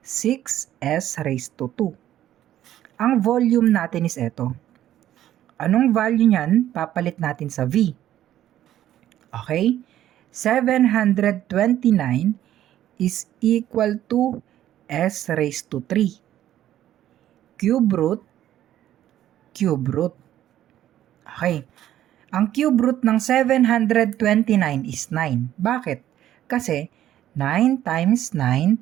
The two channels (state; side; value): quieter; left; 12.3 dB